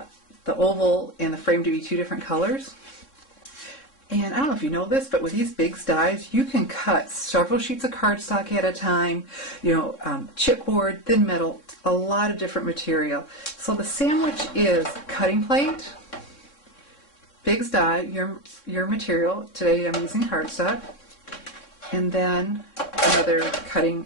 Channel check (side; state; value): right; late; 3.6 ms